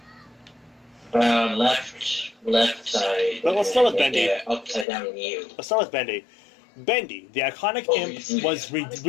Left side. Well, let's start with Bendy. Yeah, upside down view. Let's start with Bendy. Bendy, the iconic imp, was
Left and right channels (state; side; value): drops out; right; at 4.9 s